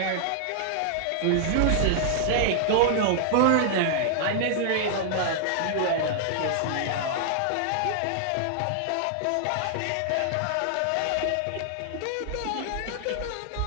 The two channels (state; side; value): different; both; correlation -0.01